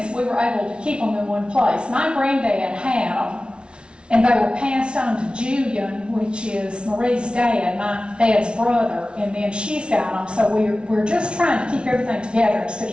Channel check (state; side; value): late; left; 0.057 ms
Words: we were able to keep them in one place. My granddad had them, and they were passed on to Julian, which is Marie's dad, my dad's brother, and then she's got them. So we're just trying to keep everything together instead